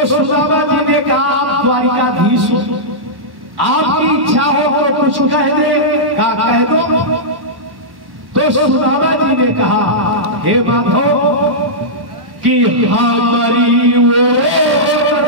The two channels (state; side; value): late; left; 1.1 ms